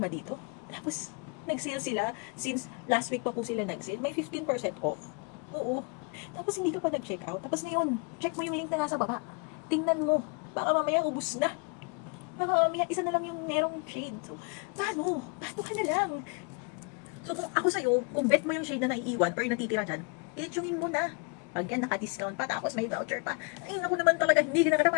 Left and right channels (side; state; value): right; quieter; 34.2 dB